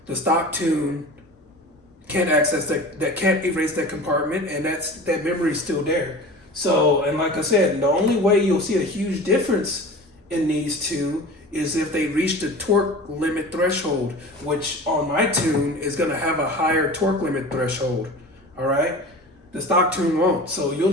the stock tune can't access that can't erase that compartment, and that memory is still there. So, and like I said, the only way you'll see a huge difference in these two is if they reach the torque limit threshold, which on my tune is going to have a higher torque limit threshold, all right? The stock tune won't. So you'll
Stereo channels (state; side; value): normal; both; correlation 0.37